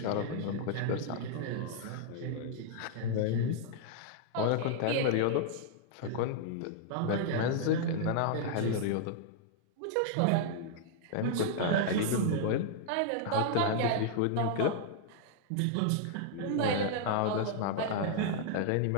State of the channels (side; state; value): both; different; correlation -0.01